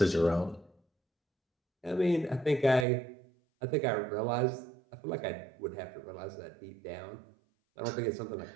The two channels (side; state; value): left; drops out; at 2.9 s